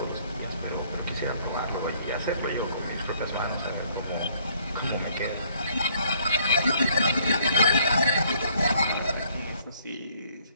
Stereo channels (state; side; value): inverted; both; correlation -0.64